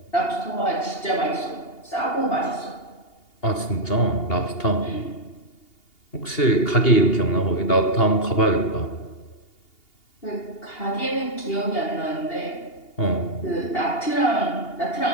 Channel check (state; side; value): late; right; 2.8 ms